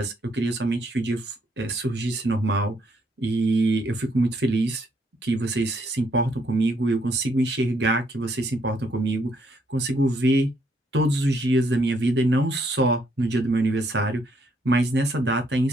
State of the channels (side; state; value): both; normal; correlation 0.71